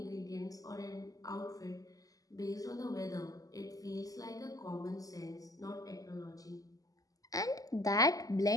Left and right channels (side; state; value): right; late; 0.17 ms